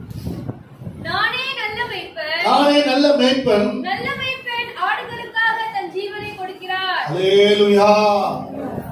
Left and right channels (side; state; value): both; identical; correlation 1.00